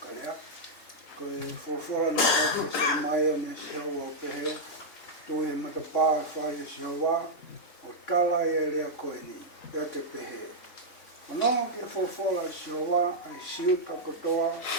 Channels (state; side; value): late; right; 3.6 ms